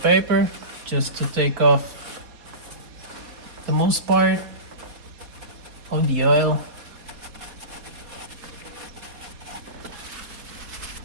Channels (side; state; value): left; late; 4.2 ms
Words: paper just to take off the most part of the oil.